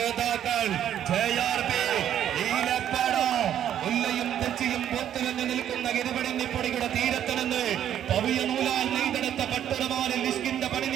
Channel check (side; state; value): left; quieter; 10.4 dB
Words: JRB നീലപ്പട. ഉല്ലയും തെച്ചിയും പൊത്തുലഞ്ഞു നിൽക്കുന്ന ഇരുപടിഞ്ഞിപ്പൊടിയുടെ തീരത്ത് നിന്ന് പവിയ നൂലാൽ നെയ്തെടുത്ത പട്ടുടമാലിൽ നിഷ്കിന്റെ